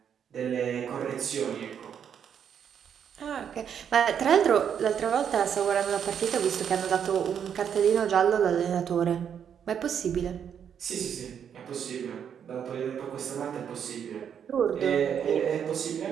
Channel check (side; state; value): left; quieter; 8.2 dB